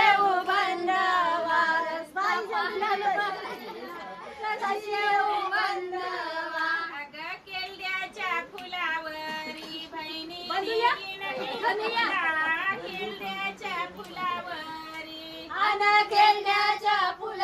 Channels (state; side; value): identical; both; correlation 1.00